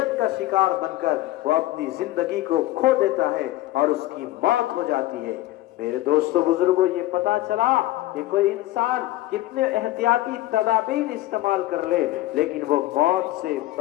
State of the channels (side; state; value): right; quieter; 16.4 dB